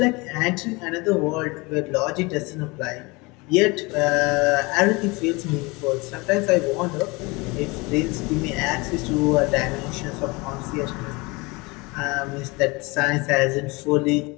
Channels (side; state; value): right; quieter; 25.4 dB